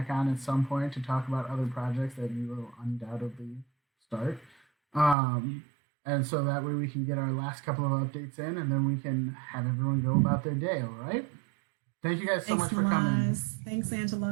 on at some point to talk about other projects that you will undoubtedly start. And so that way we can get our last couple of updates in, and then we can have everyone go about their day, all right? Thank you guys so much for coming. Thanks,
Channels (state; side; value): drops out; left; at 5.2 s